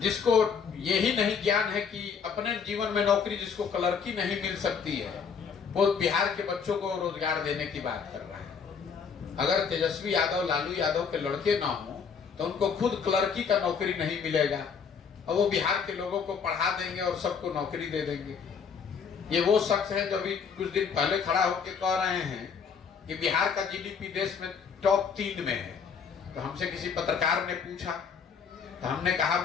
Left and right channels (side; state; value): right; quieter; 6.3 dB